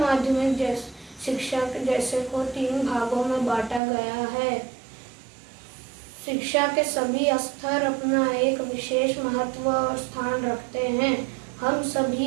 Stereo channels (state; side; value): drops out; left; at 3.8 s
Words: शिक्षा जैसे को 3 भागों में बांटा गया है। शिक्षा के सभी स्तर अपना एक विशेष महत्व और स्थान रखते हैं। हम